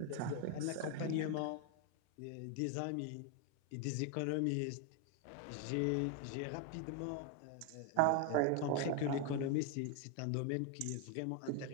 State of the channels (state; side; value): different; both; correlation 0.01